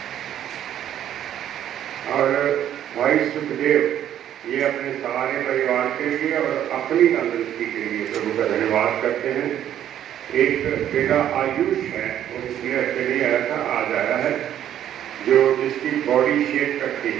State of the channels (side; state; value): left; quieter; 10.8 dB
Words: और भाई सुखदेव, ये अपने सारे परिवार के लिए और अपनी तंदुरुस्ती के लिए प्रभु का धन्यवाद करते हैं। एक बेटा आयुष है, वो पिछले हफ्ते नहीं आया था, आज आया है, जो जिसकी बॉडी शेप करती